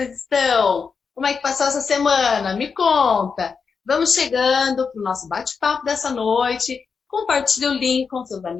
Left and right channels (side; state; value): right; quieter; 5.6 dB